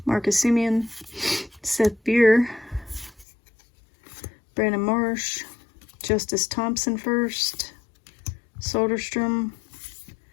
Marcus Semien, Seth Beer, Brandon Marsh, Justice Thompson first, Soderstrom,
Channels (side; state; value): right; drops out; at 3.2 s